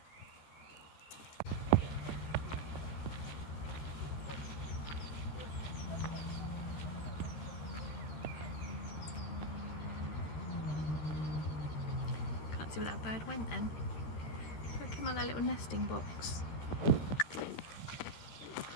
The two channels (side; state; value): right; late; 13 ms